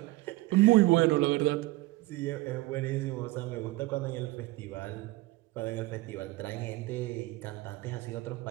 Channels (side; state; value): left; quieter; 19.8 dB